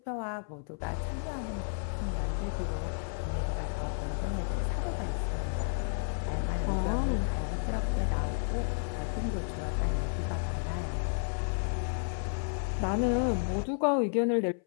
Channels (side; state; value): right; silent; 56 dB below the other